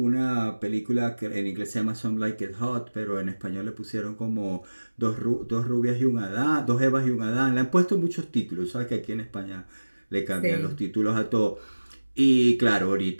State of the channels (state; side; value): inverted; both; correlation -1.00